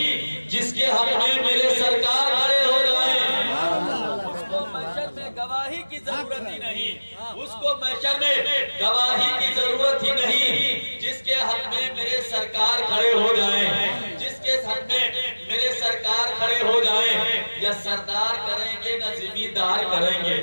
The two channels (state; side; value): inverted; both; correlation -1.00